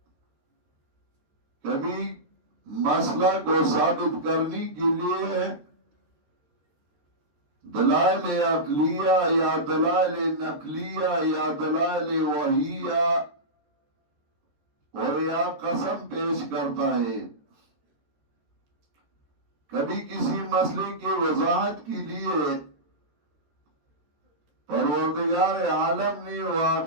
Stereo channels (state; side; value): late; left; 13 ms